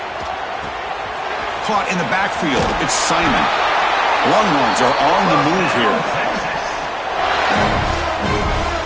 Caught in the backfield. It's Simon. Longhorns are on the move here.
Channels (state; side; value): identical; both; correlation 1.00